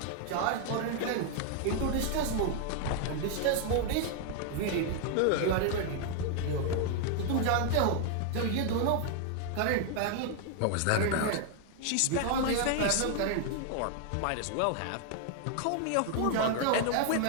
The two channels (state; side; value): different; both; correlation 0.00